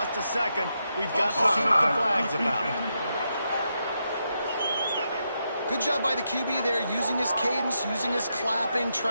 a second. We've got to see what the flag's about. Good job by the QB there, using his cadence, using his clapping,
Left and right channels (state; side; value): inverted; both; correlation -0.83